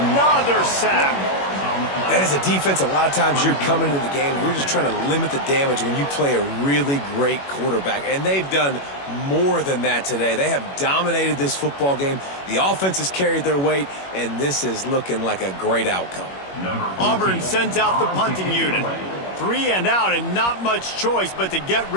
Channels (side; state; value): right; late; 21 ms